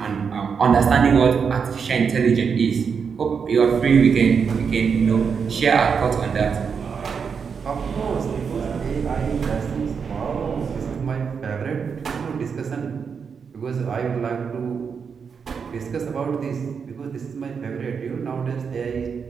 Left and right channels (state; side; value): quieter; left; 6.2 dB